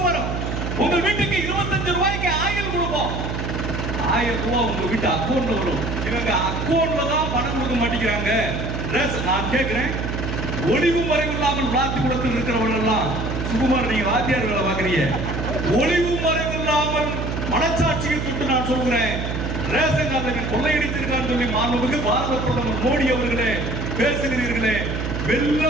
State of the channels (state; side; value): noise; right; hum, 3 dB below the sound